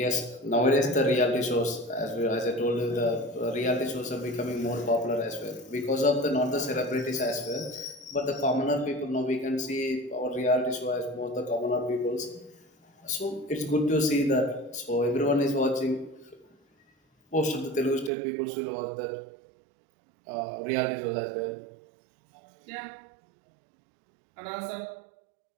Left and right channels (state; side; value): drops out; left; at 18.1 s